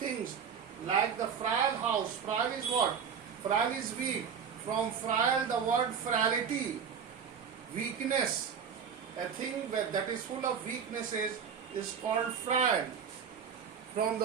like the frail house. Frail is what? Frail is weak. From frail, the word frailty, weakness. A thing that is full of weaknesses is called frail. From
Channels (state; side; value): quieter; left; 7.0 dB